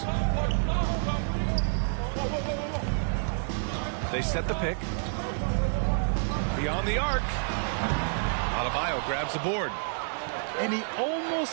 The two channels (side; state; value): left; silent; digital silence